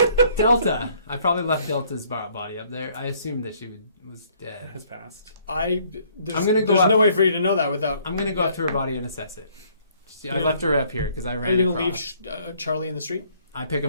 Delta. I probably left Delta's body up there. I assumed that she was It dead. has passed. There's I'm gonna go There's up- no way for you to know that without. I'm gonna go up to her body and assess it. I left her up here because I ran. Are you gonna across. leave Charlie in the street? I pick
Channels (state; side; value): inverted; both; correlation -0.63